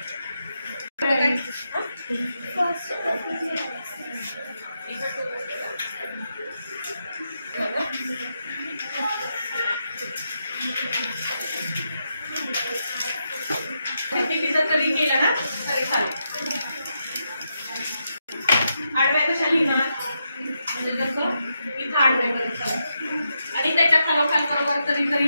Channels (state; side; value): inverted; both; correlation -0.84